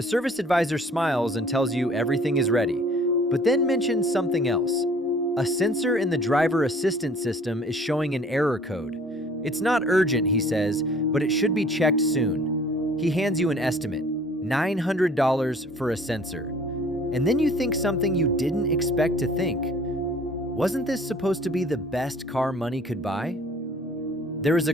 service advisor smiles and tells you everything is ready, but then mentions something else. A sensor in the driver assistance system is showing an error code. It's not urgent, he says, but it should be checked soon. He hands you an estimate, $900 for a sensor. And then you think something you didn't expect to think. Wasn't this supposed to be the best car money could buy? There is a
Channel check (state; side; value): normal; both; correlation 0.53